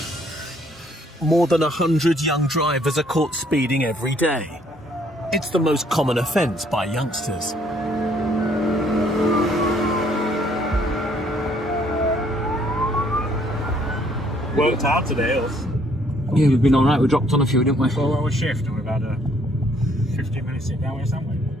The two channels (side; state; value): both; normal; correlation 0.65